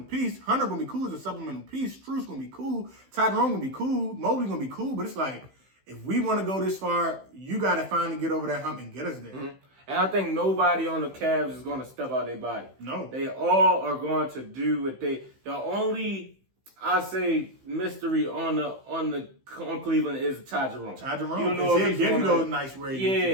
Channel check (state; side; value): late; left; 15 ms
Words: piece. Hunter going to be cool as a supplemental piece. Strus going to be cool. Ty Jerome going to be cool. Mobley going to be cool. But it's like, if we want to go this far, you got to finally get over that hump and get us there. And I think nobody on the Cavs is going to step out their body. No. They all are going to do what the only, I say, mystery on Cleveland is Ty Jerome. Ty Jerome. You don't know if he'll give you those nice ratings.